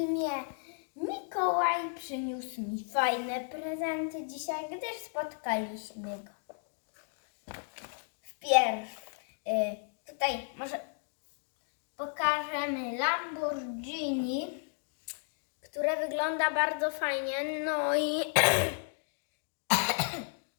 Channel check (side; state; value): right; silent; 55 dB below the other